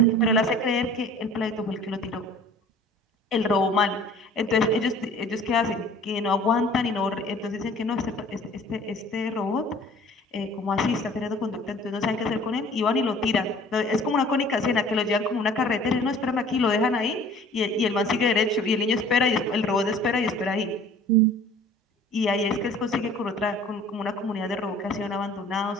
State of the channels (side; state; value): both; normal; correlation 0.49